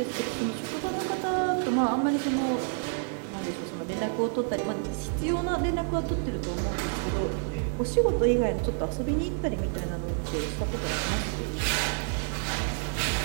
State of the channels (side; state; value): left; silent; 59 dB below the other